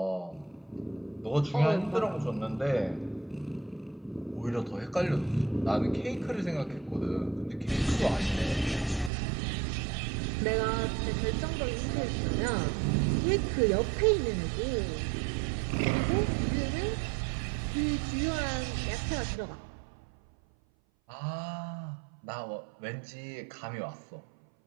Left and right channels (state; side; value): drops out; left; at 9.1 s